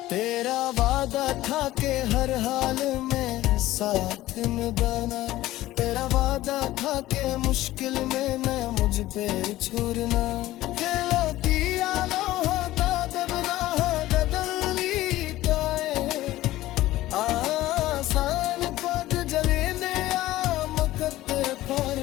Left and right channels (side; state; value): right; quieter; 16.0 dB